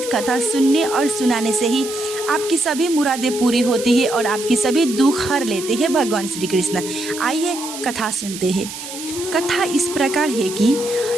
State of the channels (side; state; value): right; noise; hiss, 10 dB below the sound